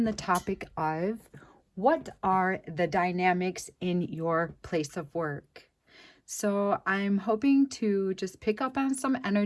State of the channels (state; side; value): identical; both; correlation 1.00